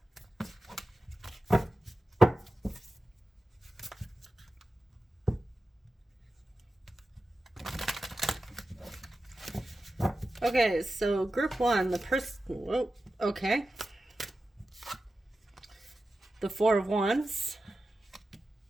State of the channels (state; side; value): normal; both; correlation 0.92